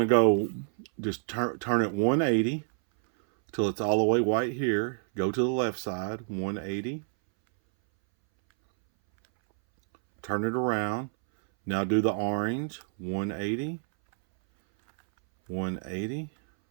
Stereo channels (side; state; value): left; silent; 59 dB below the other